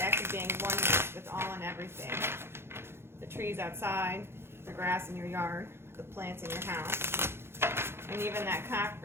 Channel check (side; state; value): left; late; 0.12 ms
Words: act of being oneness with all and everything. The trees outside, the grass in your yard, the plants in your house, and even that